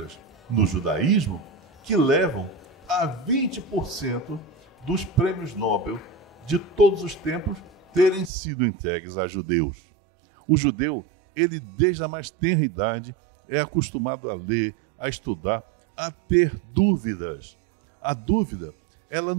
no judaísmo, que levam a 20% dos prêmios Nobel de todos os tempos terem sido entregues a judeus. O judeu, ele desde a mais tenra idade, é acostumado a ler, a estudar, a ter dúvidas. A dúvida, ela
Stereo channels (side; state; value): left; drops out; at 8.3 s